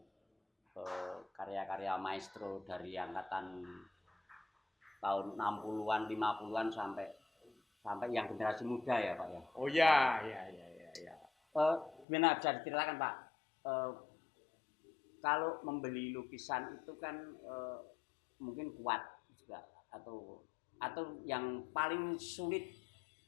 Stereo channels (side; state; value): right; drops out; at 12.1 s